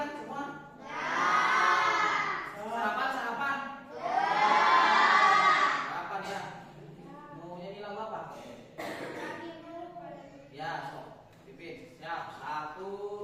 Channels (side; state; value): both; identical; correlation 1.00